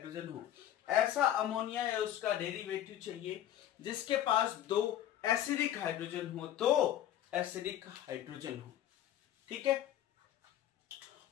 हो, ऐसा अमोनिया या उसका डेरिवेटिव चाहिए जिसके पास 2 एसिडिक हाइड्रोजन हो, तो एसिडिक हाइड्रोजन हो, ठीक है।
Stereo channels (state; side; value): quieter; right; 11.6 dB